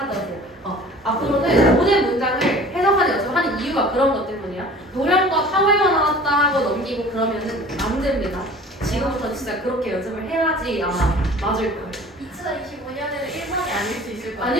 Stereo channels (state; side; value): normal; both; correlation 0.45